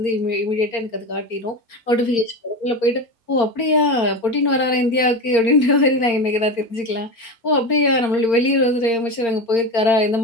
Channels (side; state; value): right; late; 4.4 ms